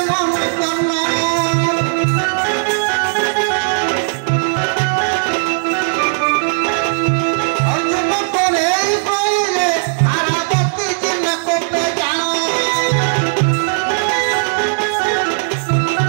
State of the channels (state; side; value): silent; left; digital silence